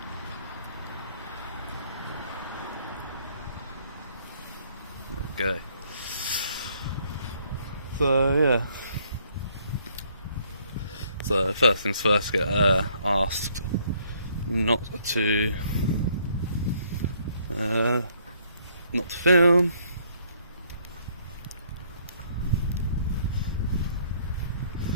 Okay. So yeah. So first things first, get asked not to film.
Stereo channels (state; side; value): inverted; both; correlation -0.65